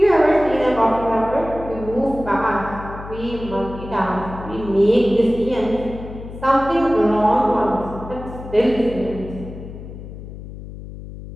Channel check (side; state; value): left; noise; hum, 12 dB below the sound